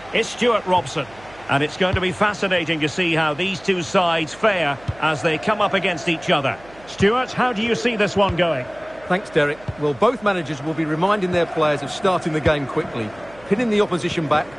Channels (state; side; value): noise; right; hum, 24 dB below the sound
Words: is Stuart Robson. And it's going to be fascinating to see how these two sides fare as they come up against each other. Stuart, how do you see this one going? Thanks, Derek. Well, both managers will be reminding their players of starting the game quickly, pinning the opposition back,